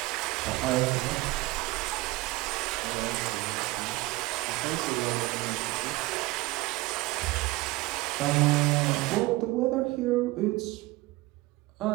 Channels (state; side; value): quieter; left; 20.7 dB